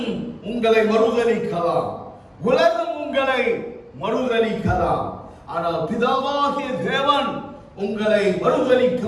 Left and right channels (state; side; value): identical; both; correlation 1.00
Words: உங்களை மறுதலிக்கலாம், உலகம் உங்களை மறுதலிக்கலாம், ஆனால் பிதாவாகிய தேவன் உங்களை மறுதலிக்க